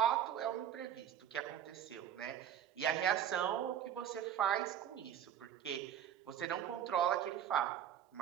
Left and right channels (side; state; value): left; quieter; 9.9 dB